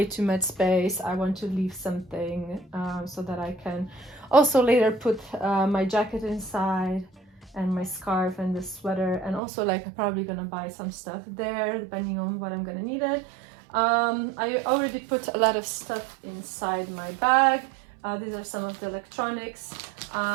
too much space. I want to leave something so that I can also later put my jacket inside and my scarf and the sweater, and also like I'm probably gonna buy some stuff there depending on what I'm gonna need it. I already put a lot of stuff inside my bag. These are some of the electronics.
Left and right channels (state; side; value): drops out; left; at 9.4 s